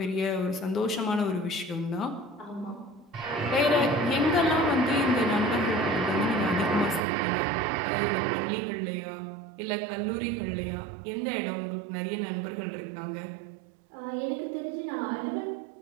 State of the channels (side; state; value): left; drops out; at 7.0 s